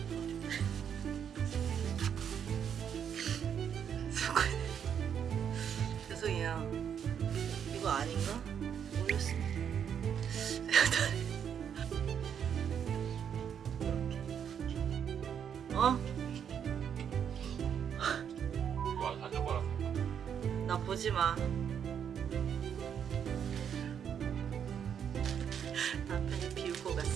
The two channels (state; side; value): quieter; left; 8.2 dB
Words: 죄송해요. 이거 아닌가? 모르겠습니다. 어? 와, 사진 봐라. 나 보지 마. 남편이 비우고